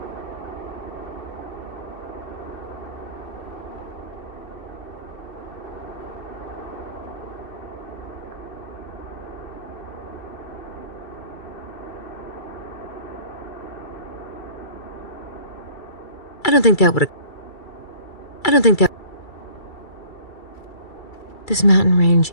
I don't think that... This mountain range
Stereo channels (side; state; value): right; late; 2.3 ms